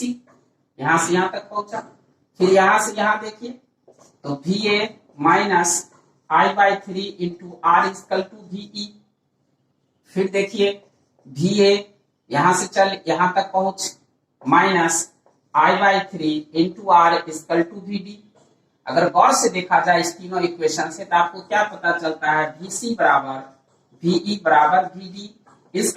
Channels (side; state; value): both; identical; correlation 1.00